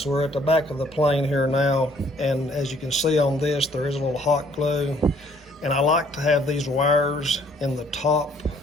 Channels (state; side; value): normal; both; correlation 0.62